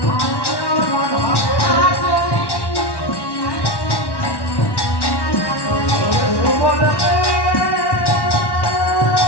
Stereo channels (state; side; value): late; right; 1.1 ms